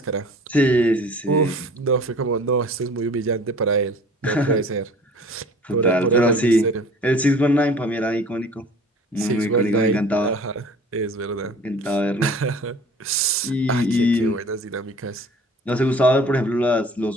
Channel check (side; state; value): both; normal; correlation 0.47